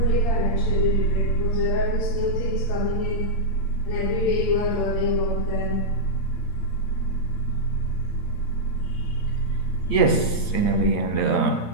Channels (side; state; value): right; late; 8.8 ms